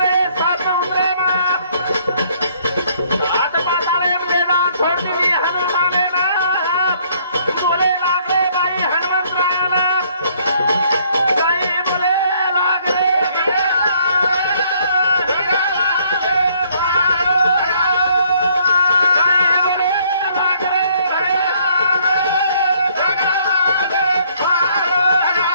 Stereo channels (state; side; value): inverted; both; correlation -0.64